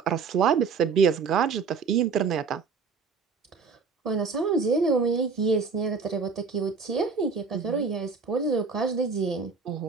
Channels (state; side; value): quieter; left; 5.2 dB